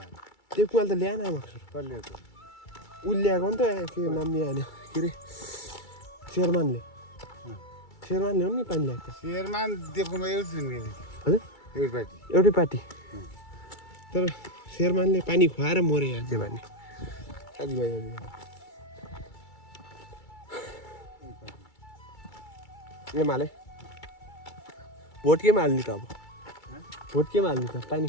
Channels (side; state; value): right; late; 2.3 ms